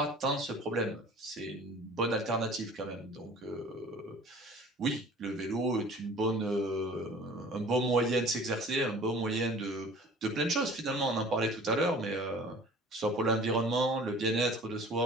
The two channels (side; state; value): both; normal; correlation 0.46